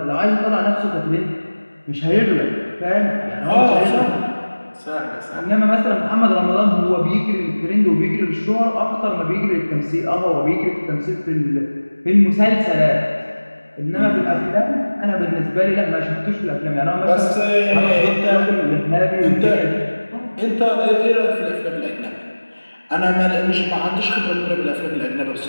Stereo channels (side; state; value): both; inverted; correlation -1.00